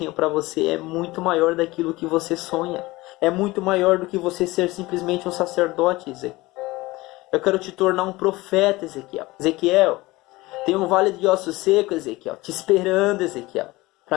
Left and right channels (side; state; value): right; quieter; 20.4 dB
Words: para você é muito maior daquilo que você sonha. É muito maior do que você ser simplesmente um sacerdote, Ezequiel. Eu quero te tornar um profeta, Ezequiel. Ezequiel, tem um vale de ossos secos, Ezequiel, te esperando, Ezequiel,